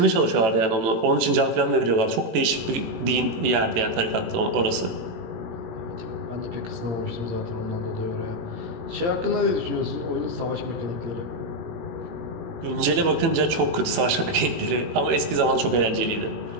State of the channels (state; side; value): late; left; 18 ms